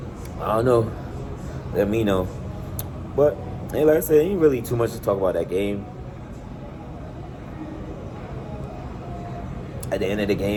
I don't know. Let me know. But hey, like I said, ain't really too much to talk about that game. At the end of the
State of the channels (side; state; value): both; identical; correlation 1.00